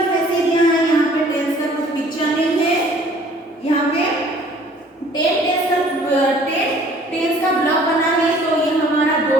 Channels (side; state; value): both; normal; correlation 0.54